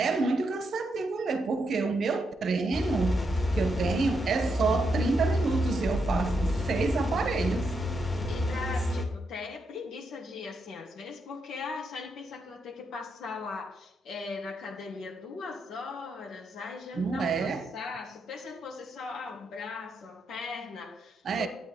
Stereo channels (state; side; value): normal; both; correlation 0.81